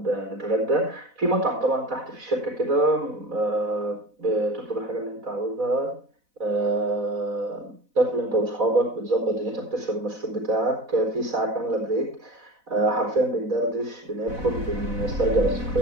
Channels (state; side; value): late; left; 4.0 ms